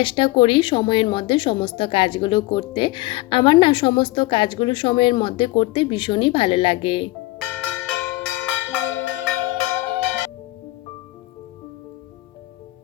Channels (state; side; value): quieter; right; 19.7 dB